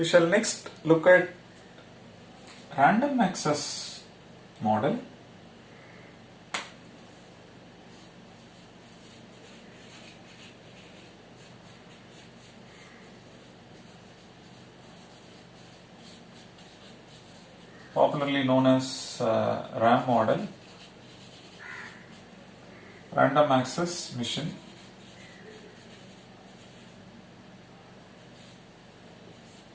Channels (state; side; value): identical; both; correlation 1.00